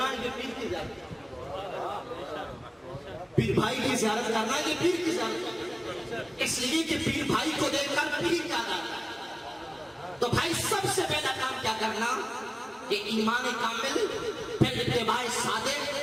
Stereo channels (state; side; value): identical; both; correlation 1.00